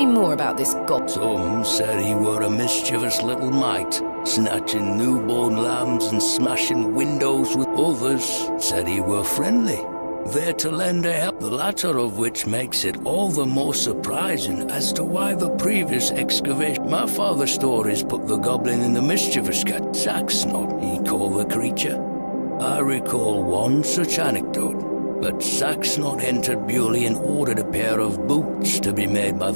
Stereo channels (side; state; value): both; inverted; correlation -1.00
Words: more about this goblin. Some said he were a mischievous little mite, snatching newborn lambs and smashing windows with others. Said he were friendly, there to lend a help, the latter of which makes it all the more surprising as to why the previous excavation. My father's stories put the goblin in the mischievous cat. Saxnot, he called the creature. I recall one such anecdote, that Saxnot entered Bewley and ordered a pair of boots to be made by